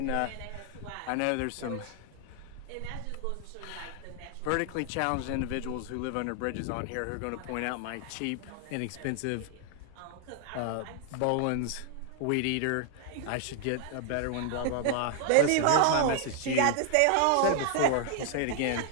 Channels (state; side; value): different; both; correlation 0.00